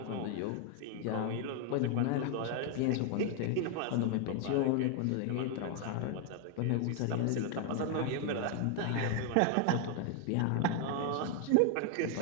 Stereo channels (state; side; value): different; both; correlation 0.00